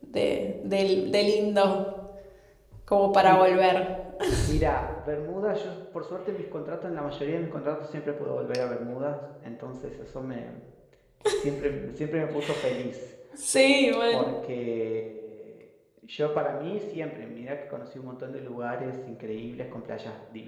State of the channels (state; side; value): identical; both; correlation 1.00